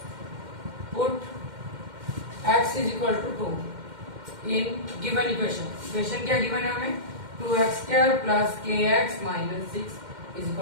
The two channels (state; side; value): late; left; 2.1 ms